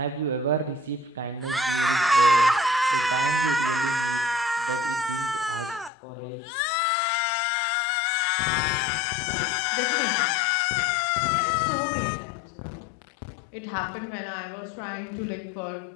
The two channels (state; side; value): drops out; right; at 5.9 s